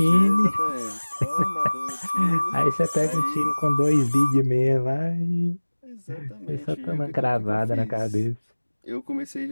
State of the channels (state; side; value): inverted; both; correlation -1.00